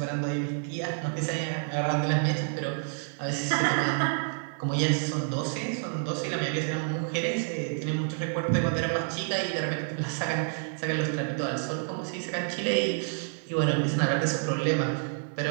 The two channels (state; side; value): silent; left; 57 dB below the other